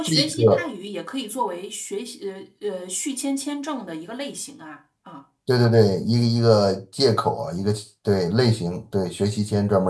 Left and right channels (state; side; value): identical; both; correlation 1.00